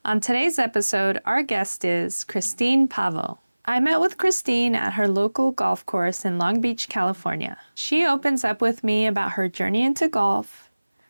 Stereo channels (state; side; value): inverted; both; correlation -1.00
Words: On today's episode, our guest is Christine Pavo. I met with Christine at her local golf course in Long Beach, California. She opens up with me about her journey into golf,